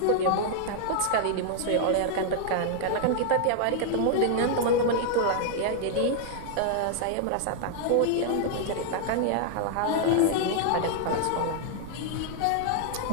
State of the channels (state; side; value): different; both; correlation -0.01